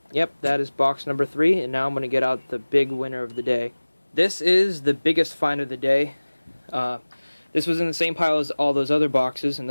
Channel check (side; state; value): both; inverted; correlation -1.00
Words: yep, that is box number 3, and now I'm going to get out the big winner of the day. This is the biggest find of the day. This was in the same pile as all those other boxes, and